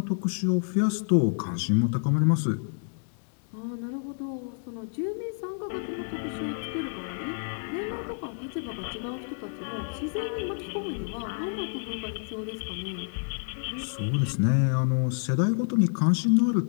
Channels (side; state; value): right; silent; 59 dB below the other